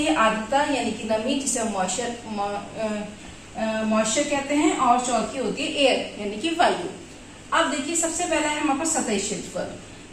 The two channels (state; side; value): identical; both; correlation 1.00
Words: है आर्द्रता यानी कि नमी जिसे मॉइस्चर कहते हैं, और चौथी होती है एयर यानी कि वायु। अब देखिए सबसे पहला है हमारे पास सतही क्षेत्रफल,